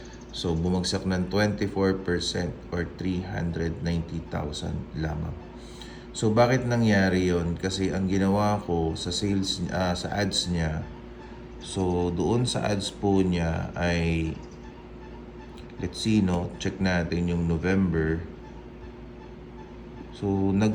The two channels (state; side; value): identical; both; correlation 1.00